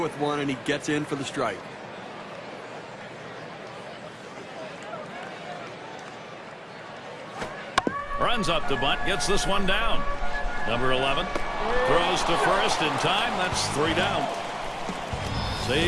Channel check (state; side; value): identical; both; correlation 1.00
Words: one, and he gets in for the strike. Runs up to bunt, gets this one down. Number 11 throws to first in time. That's 3 down.